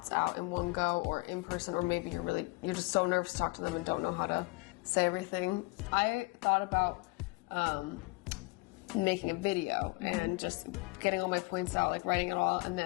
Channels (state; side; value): quieter; right; 26.0 dB